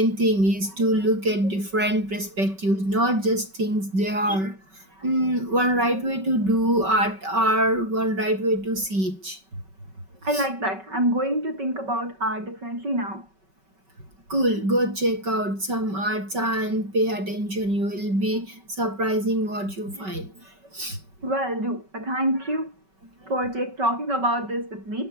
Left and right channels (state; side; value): late; left; 5.3 ms